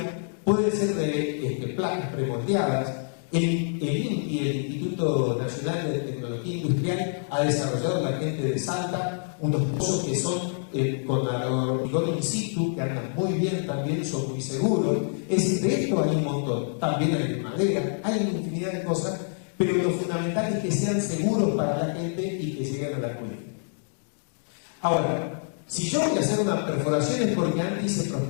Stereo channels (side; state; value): right; silent; digital silence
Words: pueden ser de placas premoldeadas. El INTI, el Instituto Nacional de Tecnología Industrial, ha desarrollado la gente de Salta unos pozos que son con hormigón in situ, que andan muy bien también, son muy seguros. Es decir, de esto hay un montón. También hay de madera, hay una infinidad de cosas, pero lo fundamental es que sean seguros para la gente y que lleguen a la cuenta. Ahora, si yo voy a hacer una perforación es porque antes hice